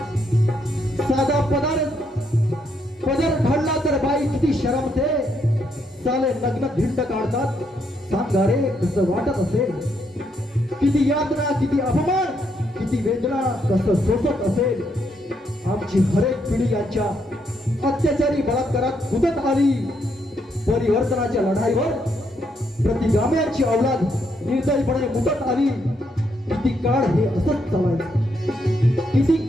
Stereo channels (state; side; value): normal; both; correlation 0.76